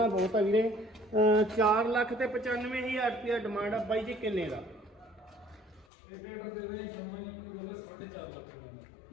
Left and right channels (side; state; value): right; drops out; at 5.9 s